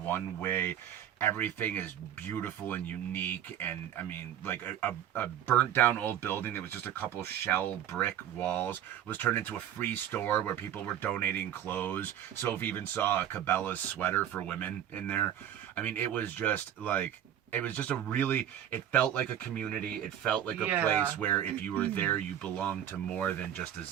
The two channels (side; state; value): left; quieter; 10.5 dB